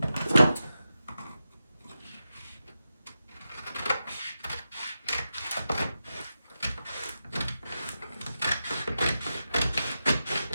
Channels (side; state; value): both; inverted; correlation -0.90